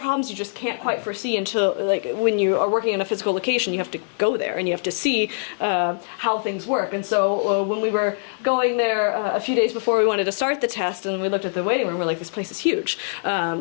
you just can't quite foresee until, like, when you are working in a physical location, you have to go there and you have to see how things work. And so when we were going there a few days before we wanted to start the test, and we looked at the waiting room, we're like, this place is huge. In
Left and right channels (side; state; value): right; silent; digital silence